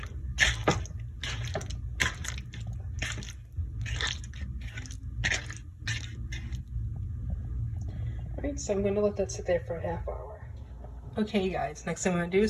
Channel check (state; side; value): identical; both; correlation 1.00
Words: Alright, so I'm going to let that sit there for a half hour. Okay guys, next thing I'm going to do